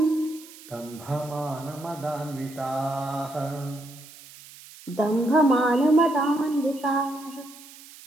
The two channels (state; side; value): noise; right; hiss, 19 dB below the sound